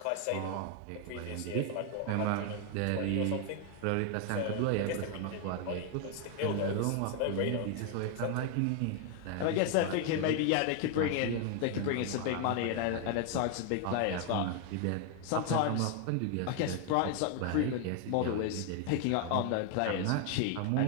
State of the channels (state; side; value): different; both; correlation 0.00